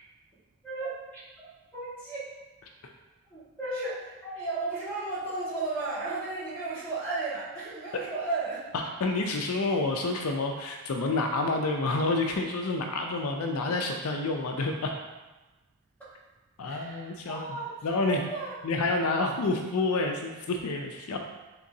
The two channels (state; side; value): normal; both; correlation 0.04